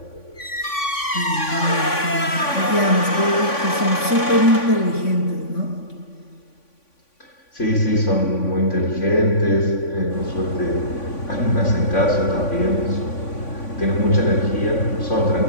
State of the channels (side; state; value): right; late; 3.5 ms